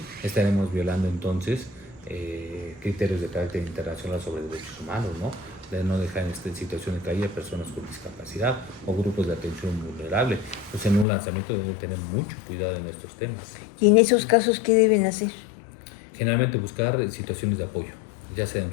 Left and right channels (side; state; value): right; drops out; at 11.1 s